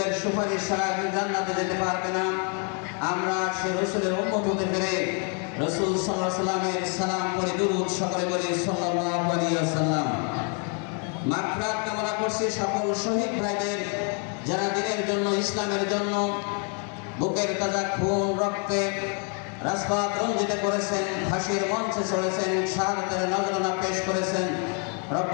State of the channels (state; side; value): quieter; right; 39.0 dB